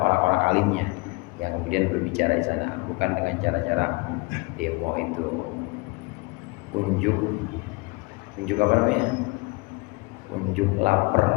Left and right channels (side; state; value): right; quieter; 27.0 dB